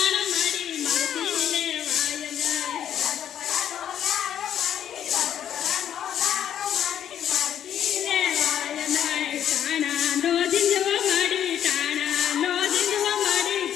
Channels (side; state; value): right; quieter; 9.9 dB